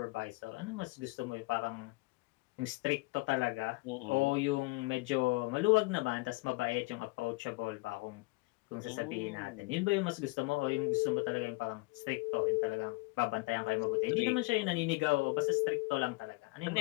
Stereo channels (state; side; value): quieter; right; 24.7 dB